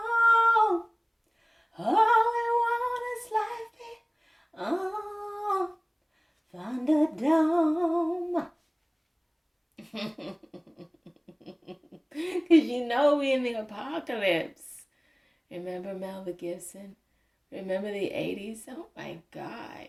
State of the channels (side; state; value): both; identical; correlation 1.00